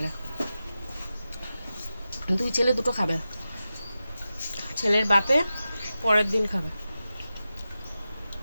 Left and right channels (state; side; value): inverted; both; correlation -0.92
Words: দুই ছেলে দুটো খাবে, ছেলের বাপে পরের দিন খাবে।